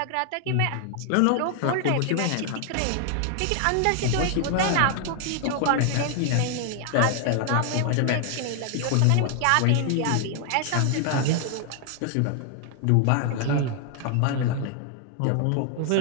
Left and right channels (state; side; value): different; both; correlation 0.00